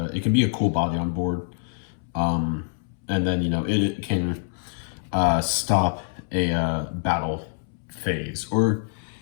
can be a cool body on board. And then, it can stop a battle phase. Or,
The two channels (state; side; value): silent; right; 62 dB below the other